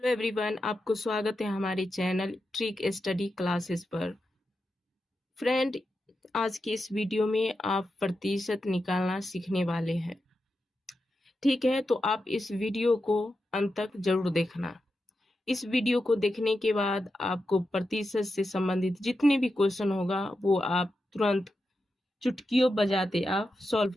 हेलो एवरीवन, आपको स्वागत है हमारे चैनल ट्रिक स्टडी क्लासेस पर। फ्रेंड, आज की इस वीडियो में आप प्रतिशत निकालना सीखने वाले हैं। ठीक है, तो आप इस वीडियो को अंत तक जरूर देखना। इस वीडियो को देखने के बाद आपको प्रतिशत से संबंधित जितने भी क्वेश्चन होगा वो आप तुरंत चुटकियों बजाते आप सॉल्व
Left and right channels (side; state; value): both; normal; correlation 0.89